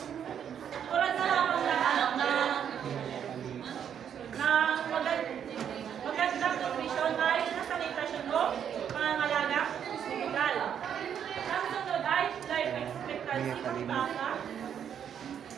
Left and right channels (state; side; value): quieter; left; 8.6 dB